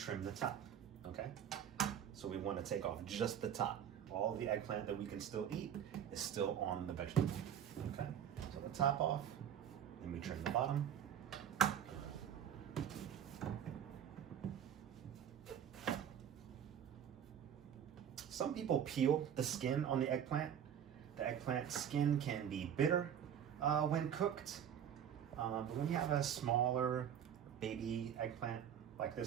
the top, okay? So we wanna take off just the top. All the eggplant that we can still eat is still on the vegetable, okay? So the top off, then we trim the bottom. Some people peel the skin on the eggplant. The eggplant skin can be bitter when cooked. But when you have a smaller baby eggplant like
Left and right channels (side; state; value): left; quieter; 9.2 dB